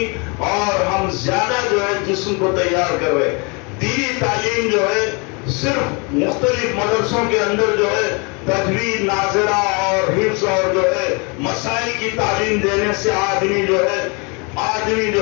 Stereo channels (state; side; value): quieter; right; 31.7 dB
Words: اور ہم زیادہ جو ہے جسم کو تیار کر رہے ہیں۔ دینی تعلیم جو ہے صرف مختلف مدرسوں کے اندر جو ہے تجوید، ناظرہ اور حفظ اور جو ہے مسائل کی تعلیم دینے سے آدمی جو